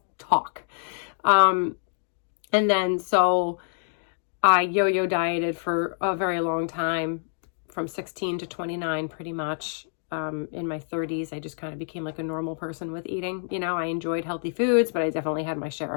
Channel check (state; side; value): silent; right; digital silence